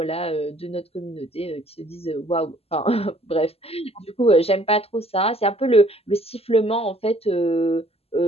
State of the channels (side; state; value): right; late; 0.29 ms